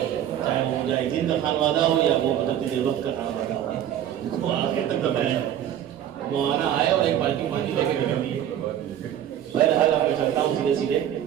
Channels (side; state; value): left; quieter; 10.7 dB